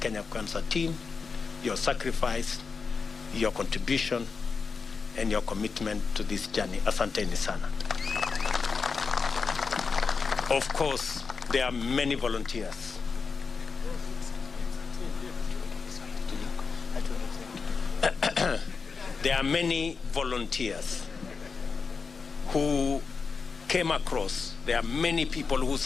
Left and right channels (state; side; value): quieter; right; 5.0 dB